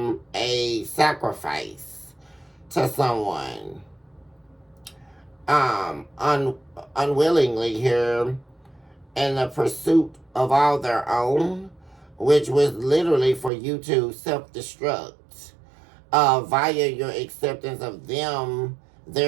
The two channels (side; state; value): left; drops out; at 13.5 s